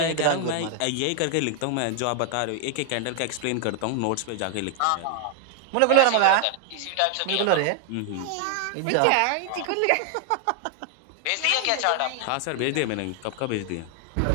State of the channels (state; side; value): different; both; correlation 0.00